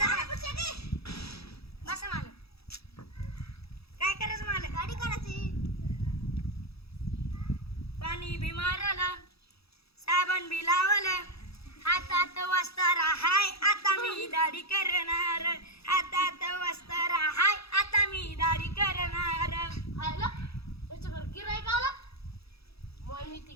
बसा मालक. काय करायचं मालक? गाडी करायची. पाणी बी मारलं, साबण बी लावलं, हातात वस्तार हाय आता मी दाढी करणार. हातात वस्तार हाय आता मी दाढी करणार. आयला त्याच्याकडे गिराईक आला. मग मी ते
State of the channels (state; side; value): late; right; 0.77 ms